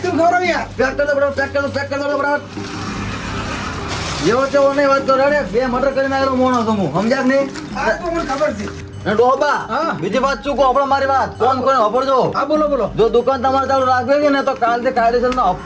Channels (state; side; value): identical; both; correlation 1.00